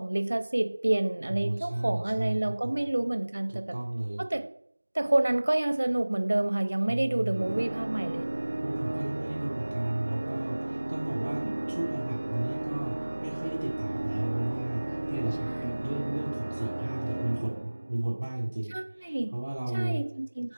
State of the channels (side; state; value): both; inverted; correlation -1.00